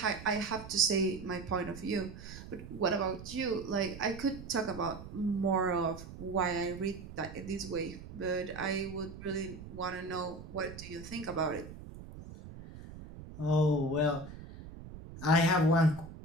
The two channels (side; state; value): right; noise; rumble, 13 dB below the sound